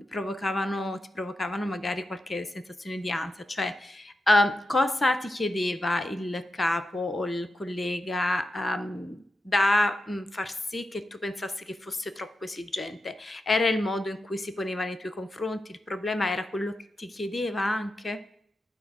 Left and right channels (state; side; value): normal; both; correlation 0.89